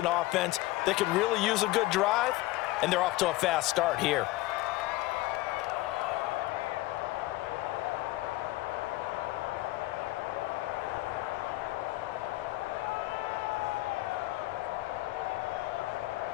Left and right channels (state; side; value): quieter; right; 18.5 dB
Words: offense that could really use a good drive, and they're off to a fast start here.